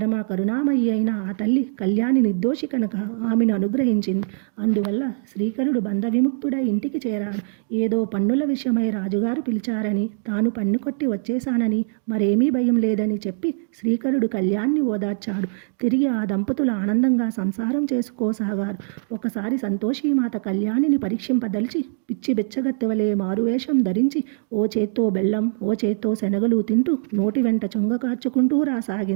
కరుణామయి అయిన ఆ తల్లి కళ్యాణి నిర్దోషి కనుక ఆమెను అనుగ్రహించింది. అందువల్ల శ్రీకరుడు బంధ విముక్తుడై ఇంటికి చేరాడు. ఏదో పన్నుల విషయమై రాజుగారు పిలిచారని, తాను పన్ను కొట్టి వచ్చేశానని, మరేమీ భయం లేదని చెప్పి శ్రీకరుడు కళ్యాణ్ణి ఓదార్చాడు. తిరిగి ఆ దంపతులు ఆనందంగా సంసారం చేసుకోసాగారు. ఒకసారి సంతోషీమాత కళ్యాణిని పరీక్షింపదలిచి పిచ్చి బెచ్చగత్తెవలే మారువేషం ధరించి ఓ చేత్తో బెల్లం, ఓ చేత్తో శనగలు తింటూ నోటి వెంట చొంగ కార్చుకుంటూ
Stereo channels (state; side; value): silent; left; 64 dB below the other